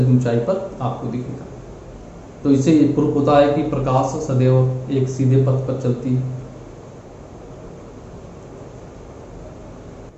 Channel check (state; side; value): identical; both; correlation 1.00